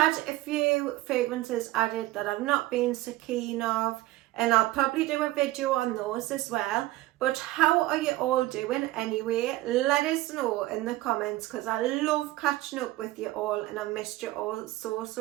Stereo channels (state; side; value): quieter; left; 17.4 dB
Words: a few fragrances added that I've not been so keen of, and I'll probably do a video on those as well. But how are you all doing anyway? Let us know in the comments, because I love catching up with you all and I've missed you all